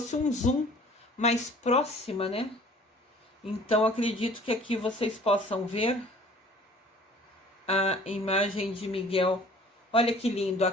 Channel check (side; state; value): both; normal; correlation 0.51